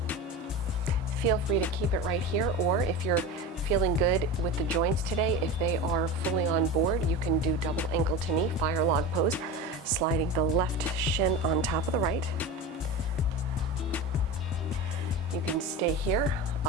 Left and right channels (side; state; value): both; normal; correlation 0.27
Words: Feel free to keep it right here, or if you're feeling good with the joints today, if they are fully on board, you can do double ankle to knee, fire log pose, sliding the left shin on top of the right. You can stay here,